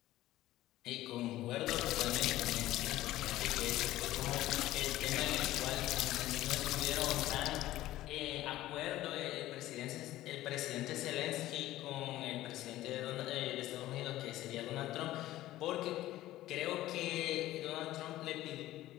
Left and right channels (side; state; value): right; quieter; 15.3 dB